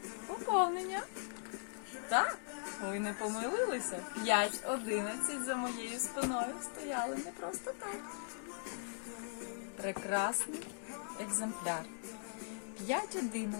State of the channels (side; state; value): right; silent; digital silence